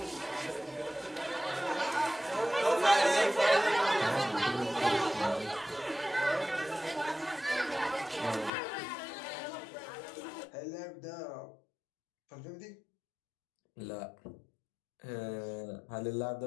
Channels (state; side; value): drops out; right; at 8.5 s